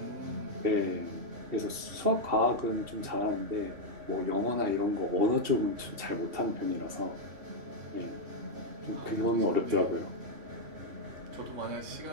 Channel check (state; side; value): late; left; 2.7 ms